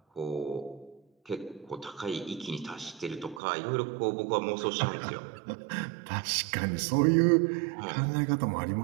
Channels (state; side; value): drops out; left; at 3.4 s